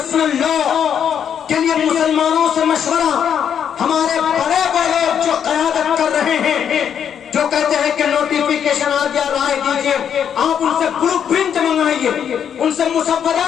لا کے لیے مسلمانوں سے مشورہ، ہمارے بڑے بڑے جو قیادت کر رہے ہیں، جو کہتے ہیں کہ نوٹیفیکیشن آ گیا، رائے دیجئے، آپ ان سے بلو پرنٹ منگائیے، ان سے مسودہ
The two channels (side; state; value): right; quieter; 8.4 dB